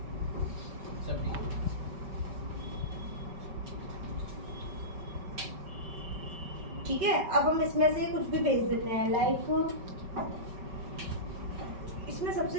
सब ठीक है। ठीक है, अब हम इसमें से कुछ भी भेज देते हैं, लाइक इसमें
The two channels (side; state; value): left; late; 5.2 ms